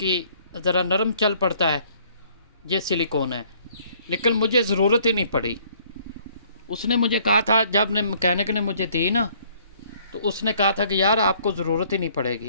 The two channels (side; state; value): both; inverted; correlation -0.60